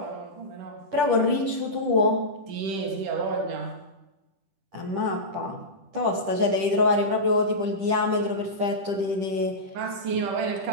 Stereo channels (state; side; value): late; left; 10 ms